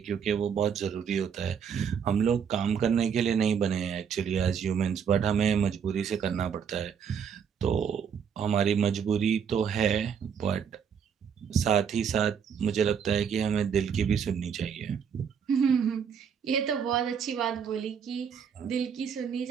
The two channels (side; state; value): left; quieter; 7.3 dB